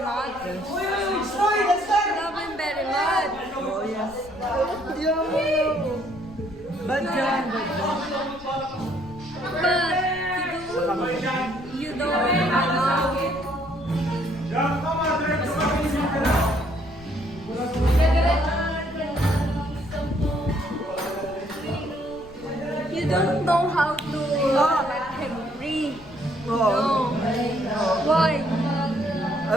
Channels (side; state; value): left; noise; rumble, 21 dB below the sound